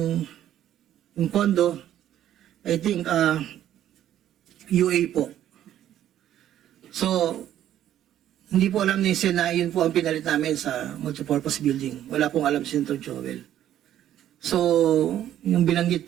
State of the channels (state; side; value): quieter; left; 11.6 dB